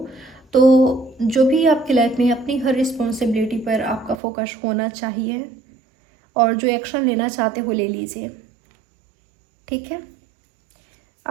तो जो भी आपकी लाइफ में अपनी हर रिस्पॉन्सिबिलिटी पर आपका फोकस होना चाहिए, और जो एक्शन लेना चाहते हो ले लीजिए, ठीक है।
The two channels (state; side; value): drops out; left; at 4.2 s